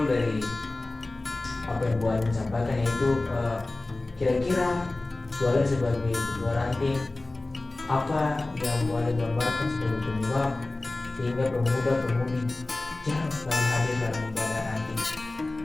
dari apa yang Bu Alen sampaikan yaitu kira-kira Bu Alen sebagai ketua ranting, apa yang Bu Alen gambarkan sebagai penyebab sehingga pemuda-pemudi jarang sekali hadir dalam ibadah ranting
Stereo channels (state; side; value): quieter; right; 3.0 dB